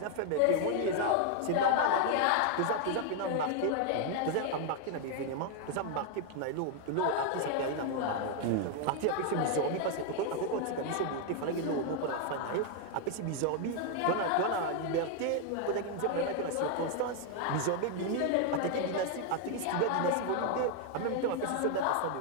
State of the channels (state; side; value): different; both; correlation 0.00